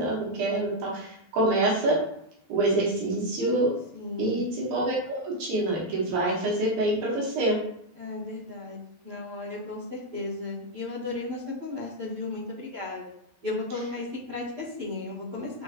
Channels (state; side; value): late; left; 12 ms